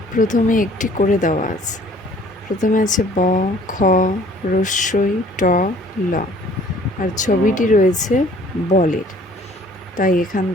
প্রথমে একটি করে দেওয়া আছে। প্রথমে আছে ব, খ, রস্যই, ট, ল। আর ছবিটি রয়েছে বলের, তাই এখান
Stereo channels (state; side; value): normal; both; correlation 0.55